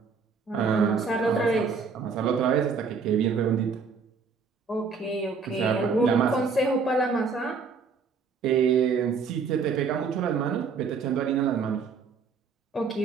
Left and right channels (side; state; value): left; quieter; 5.2 dB